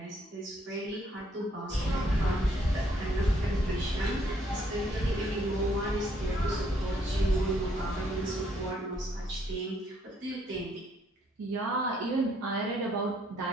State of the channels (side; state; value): both; normal; correlation 0.69